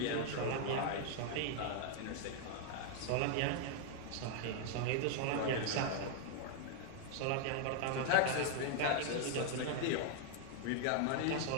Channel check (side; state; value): both; different; correlation 0.00